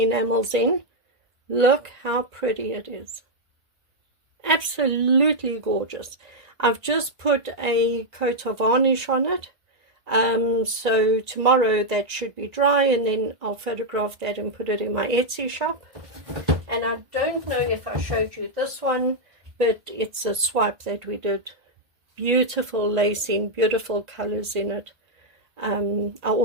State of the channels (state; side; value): late; left; 1.5 ms